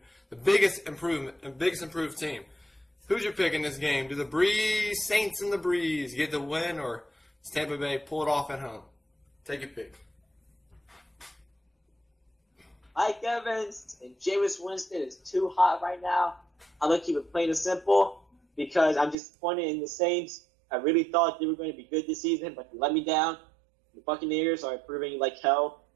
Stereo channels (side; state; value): left; drops out; at 19.2 s